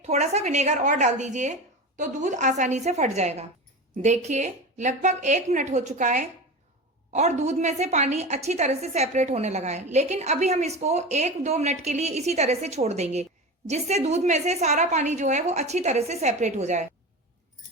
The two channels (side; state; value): both; normal; correlation 0.27